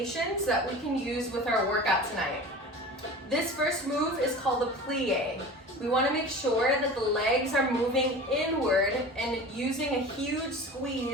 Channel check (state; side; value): normal; both; correlation 0.36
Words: that we can use with our workout tonight. This first move is called a plie. We want to make sure that the legs are moving inward and using a huge